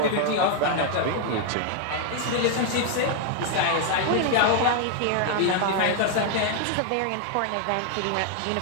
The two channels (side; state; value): both; different; correlation 0.00